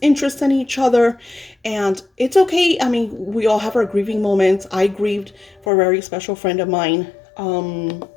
interest in each other. And it's okay. I mean, we all have our grieving moments. I grieved for a very special friend of mine,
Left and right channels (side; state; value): right; drops out; at 5.7 s